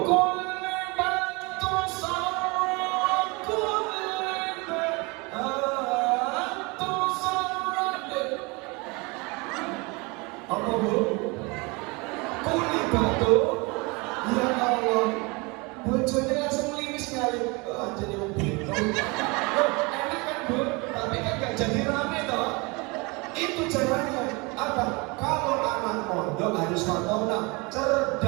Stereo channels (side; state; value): left; quieter; 27.4 dB